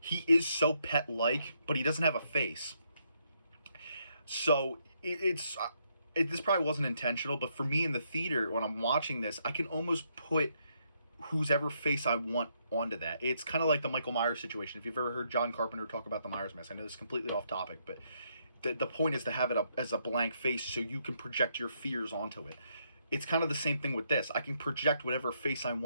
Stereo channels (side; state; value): both; inverted; correlation -0.75